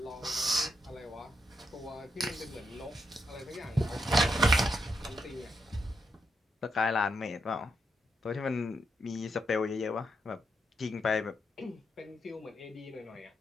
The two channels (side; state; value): both; normal; correlation 0.81